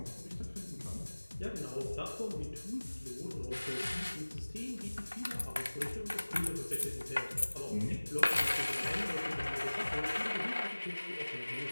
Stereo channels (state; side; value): inverted; both; correlation -1.00